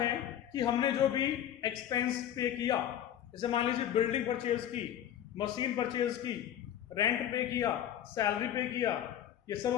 कि हमने जो भी एक्सपेंस पे किया, जैसे मान लीजिए बिल्डिंग परचेज की, मशीन परचेज की रेंट पे किया, सैलरी पे किया, ये सब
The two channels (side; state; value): right; quieter; 10.8 dB